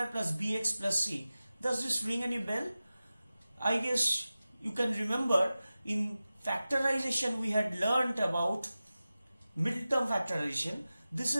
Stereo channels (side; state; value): both; inverted; correlation -0.95